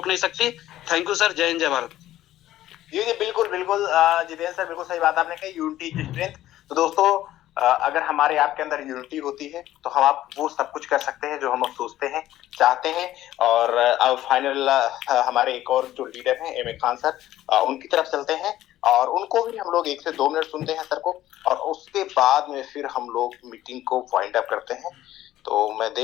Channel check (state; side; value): quieter; right; 13.8 dB